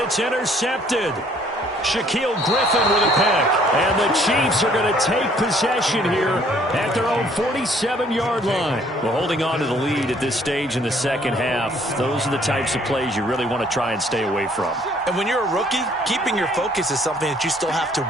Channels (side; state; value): both; normal; correlation 0.61